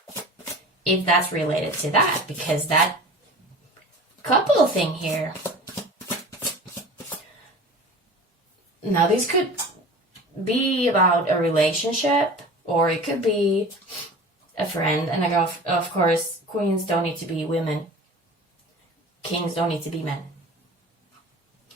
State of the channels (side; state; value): both; normal; correlation 0.38